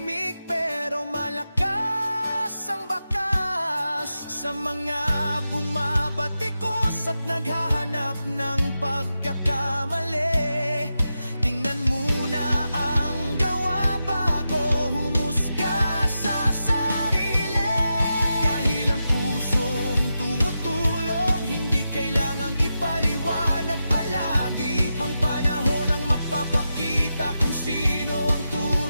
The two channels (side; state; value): both; inverted; correlation -0.89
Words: pero malakas ang bakas sa mga bumabatikos at naghahanap ng pagkakamali. Tingnan muna ang gawa bago humusga sa sarili, dahil ang pusong tumutulong hindi kailangang ipaliwanag palagi. Ang panahon ang magpapakita kung